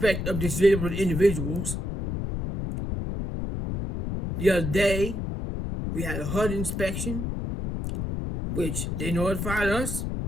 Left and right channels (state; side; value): noise; left; rumble, 3 dB below the sound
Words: of disabled individuals. The other day, we had a HUD inspection, which they notified us,